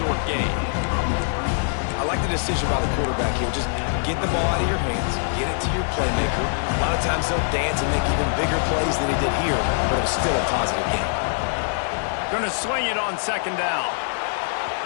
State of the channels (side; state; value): right; silent; 63 dB below the other